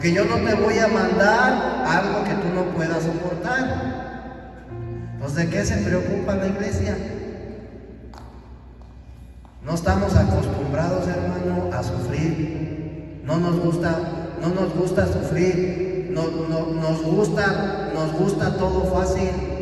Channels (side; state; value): both; identical; correlation 1.00